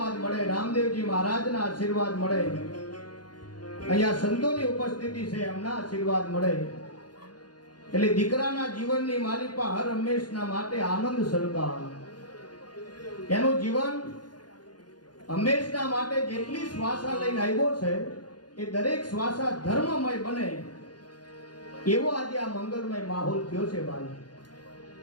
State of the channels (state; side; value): late; right; 0.70 ms